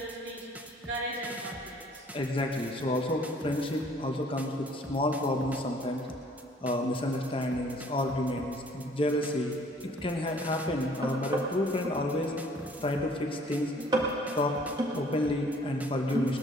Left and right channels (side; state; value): both; normal; correlation 0.57